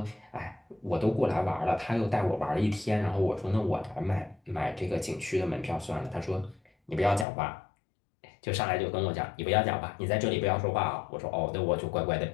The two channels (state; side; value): drops out; right; at 7.2 s